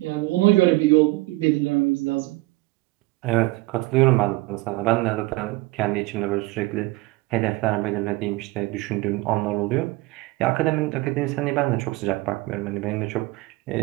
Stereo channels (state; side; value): quieter; left; 21.3 dB